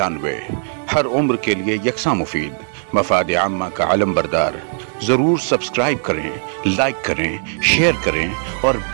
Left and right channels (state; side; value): silent; left; digital silence